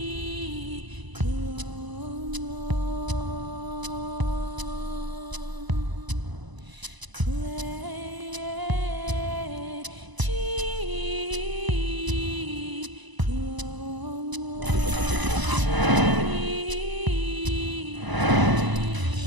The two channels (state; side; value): late; left; 1.0 ms